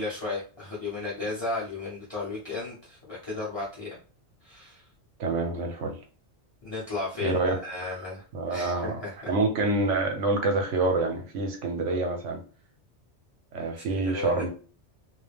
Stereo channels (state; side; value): normal; both; correlation 0.01